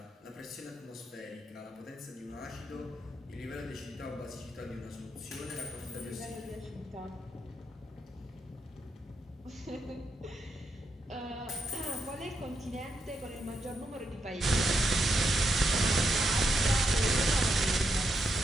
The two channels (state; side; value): normal; both; correlation 0.81